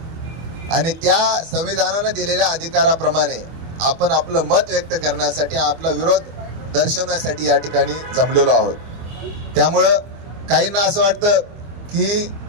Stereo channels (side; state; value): left; late; 24 ms